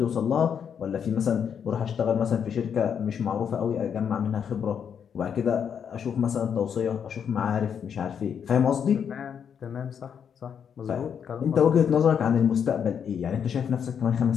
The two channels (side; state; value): right; quieter; 7.7 dB